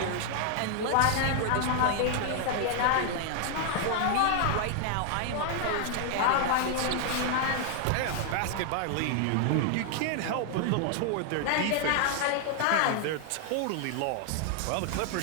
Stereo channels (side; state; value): both; different; correlation 0.00